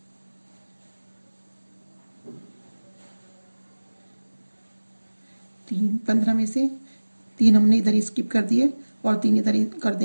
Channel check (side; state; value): both; inverted; correlation -1.00